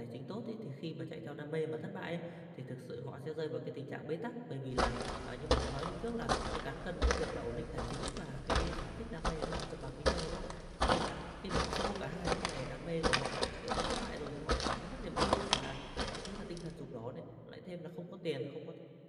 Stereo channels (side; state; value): both; identical; correlation 1.00